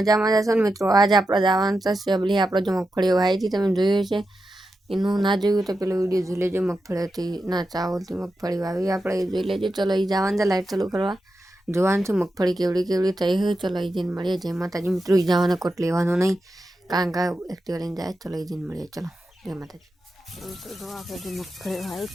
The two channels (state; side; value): normal; both; correlation 0.89